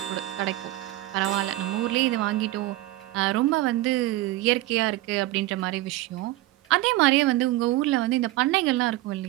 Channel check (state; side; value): quieter; left; 17.0 dB